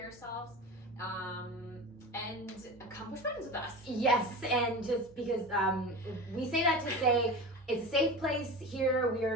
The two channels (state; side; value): normal; both; correlation 0.30